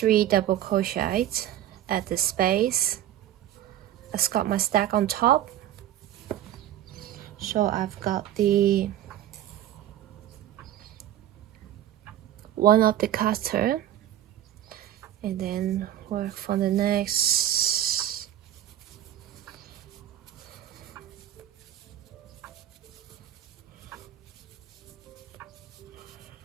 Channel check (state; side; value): quieter; left; 12.3 dB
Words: double crochets at the space. I've got my stack on top. So I've got the one of the cutter, and then work for the next.